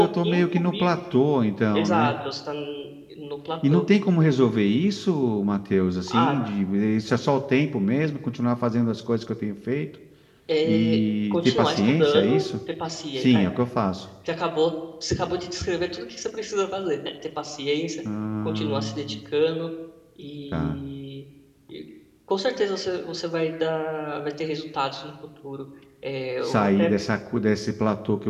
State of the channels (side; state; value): both; identical; correlation 1.00